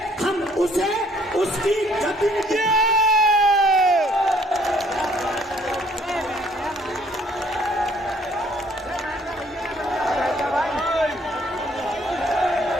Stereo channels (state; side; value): normal; both; correlation 0.63